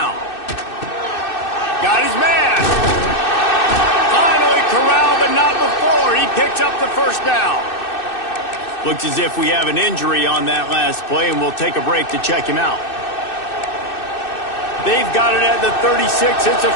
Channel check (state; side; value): late; right; 2.6 ms